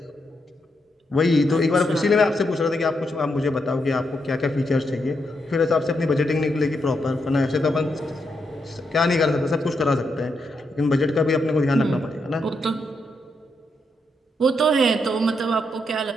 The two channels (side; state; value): both; normal; correlation 0.81